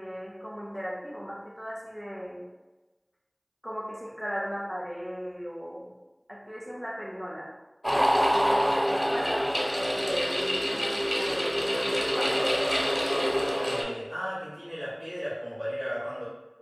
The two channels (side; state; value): both; identical; correlation 1.00